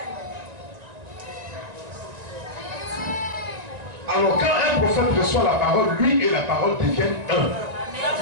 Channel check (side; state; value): left; late; 1.9 ms